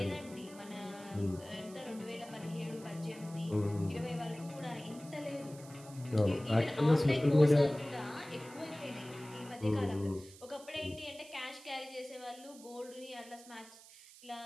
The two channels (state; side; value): noise; right; hiss, 19 dB below the sound